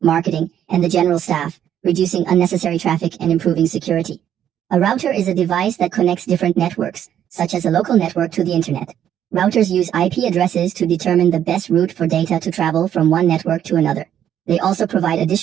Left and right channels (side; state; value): left; quieter; 10.1 dB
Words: marketing, and the general staff, reducing unnecessary traffic and improving security. A router is a device that connects different networks, such as a local network to the internet. Routers use IP addresses to determine the best route for data to travel from one network to another. They also provide